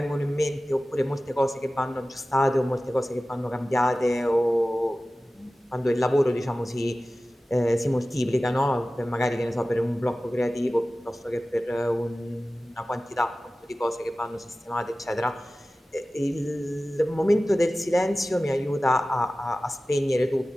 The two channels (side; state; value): both; normal; correlation 0.96